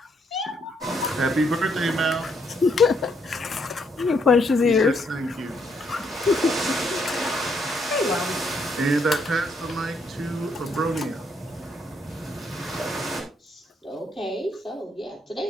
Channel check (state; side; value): normal; both; correlation 0.73